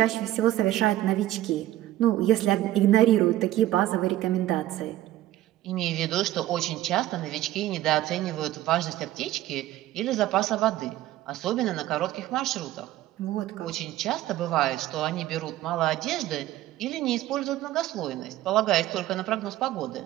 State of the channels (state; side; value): quieter; left; 14.5 dB